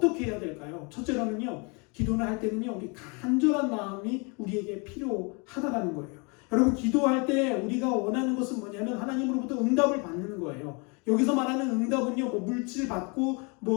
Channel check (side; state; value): right; quieter; 32.2 dB